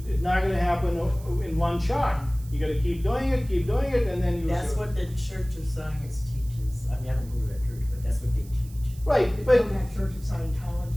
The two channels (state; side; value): noise; right; hiss, 23 dB below the sound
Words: not going to happen in one shot. You got to keep doing it, and then you. That's what the Church of Science teaches. I mean, I don't go to that church, but that's what they teach. Right, It's but from that Church of